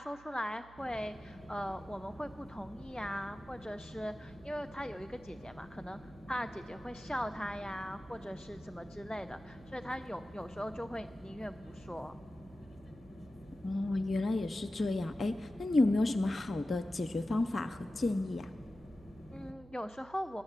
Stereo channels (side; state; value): right; noise; hum, 21 dB below the sound